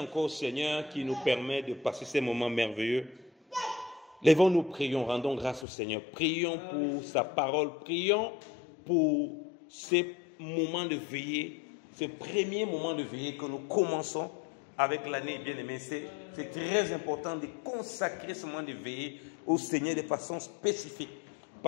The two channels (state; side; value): drops out; right; at 5.7 s